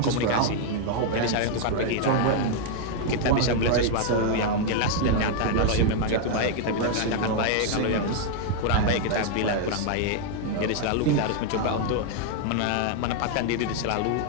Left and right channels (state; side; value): different; both; correlation 0.00